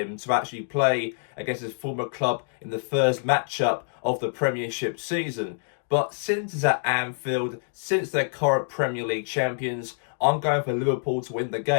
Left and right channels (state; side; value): silent; right; digital silence